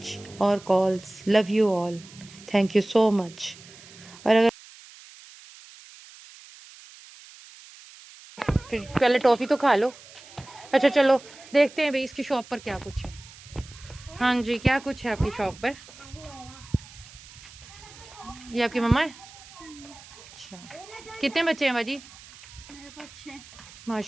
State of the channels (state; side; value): noise; right; hiss, 20 dB below the sound